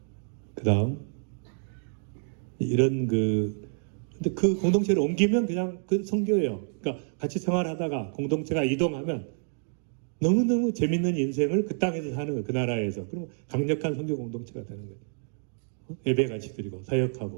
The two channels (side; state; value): left; silent; 59 dB below the other